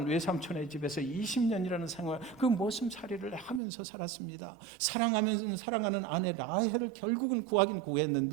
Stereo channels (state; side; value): drops out; left; at 3.6 s